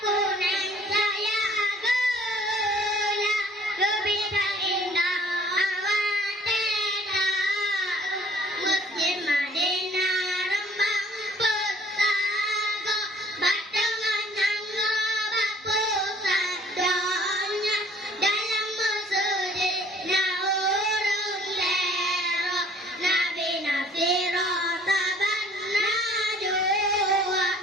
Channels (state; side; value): normal; both; correlation 0.56